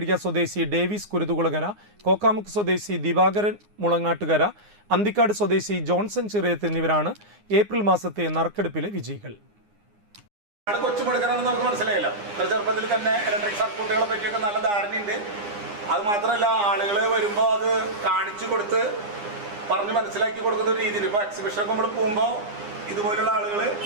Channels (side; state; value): left; late; 9.7 ms